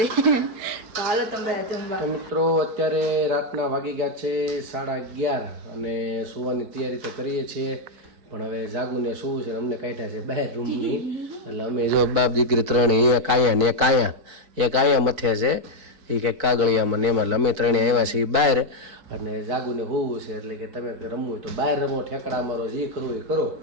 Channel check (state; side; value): late; left; 4.6 ms